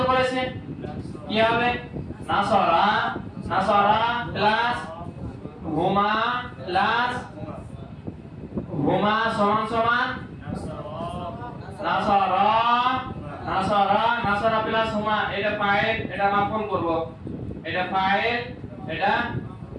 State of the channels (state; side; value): identical; both; correlation 1.00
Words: করেছে, কি হবে? নাসারা, নাসারা প্লাস হুমা প্লাস হুমা সমান সমান নাসারা, নাসারা, নাসারা প্লাস হুমা, এটা ফাইল, এটা মাফউল করব, এটা ফাইল, এটা